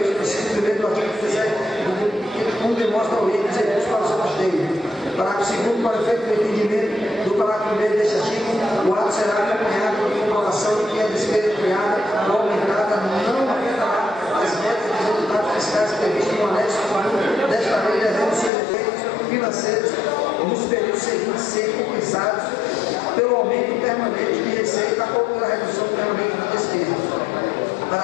no inciso 1º do artigo 17, como demonstra o item dos recursos para o seu custeio. Parágrafo 2º, para efeito do entendimento do parágrafo 1º deste artigo, o ato será acompanhado por comprovação de que a despesa criada ou aumentada não afetará as metas dos resultados fiscais previstos no anexo 1 desta lei, devendo seus efeitos financeiros nos períodos seguintes ser compensados pelo aumento permanente de receita ou pela redução permanente de despesa.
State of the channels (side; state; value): right; drops out; at 18.5 s